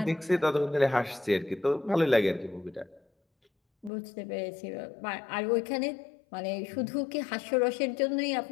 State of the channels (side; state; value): right; drops out; at 3.9 s